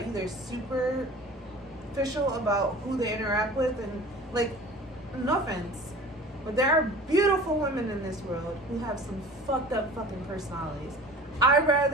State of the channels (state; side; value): normal; both; correlation 0.41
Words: superficial about who they interact with, and like, no offense, but there are beautiful women in this world who have some fucked up fucking personalities. I'd